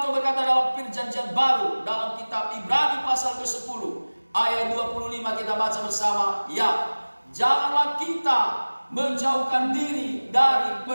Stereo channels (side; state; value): both; inverted; correlation -1.00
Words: berkata dalam Perjanjian Baru dalam kitab Ibrani pasal ke-10 ayat 25, kita baca bersama ya. Janganlah kita menjauhkan diri dari